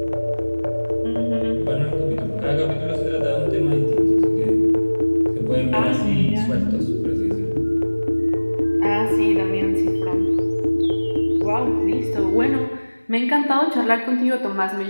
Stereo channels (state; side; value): inverted; both; correlation -1.00